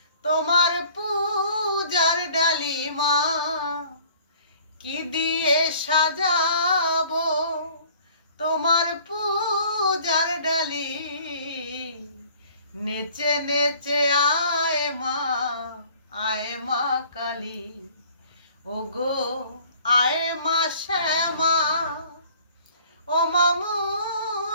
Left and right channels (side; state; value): both; inverted; correlation -0.53